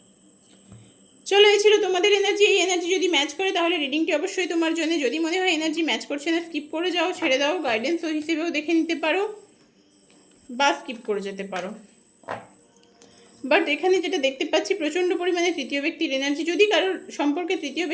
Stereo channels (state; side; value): identical; both; correlation 1.00